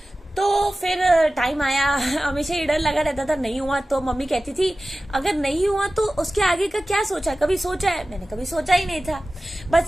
तो फिर टाइम आया, हमेशा ये डर लगा रहता था नहीं हुआ तो मम्मी कहती थी अगर नहीं हुआ तो उसके आगे का क्या सोचा, कभी सोचा है। मैंने कभी सोचा ही नहीं था,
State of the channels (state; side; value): normal; both; correlation 0.96